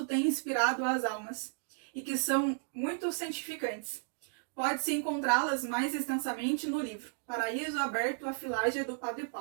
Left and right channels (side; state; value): left; silent; digital silence